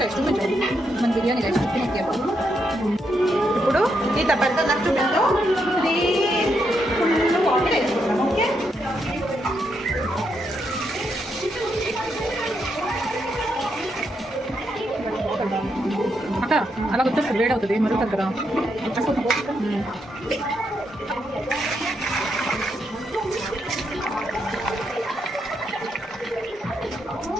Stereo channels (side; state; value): both; normal; correlation 0.80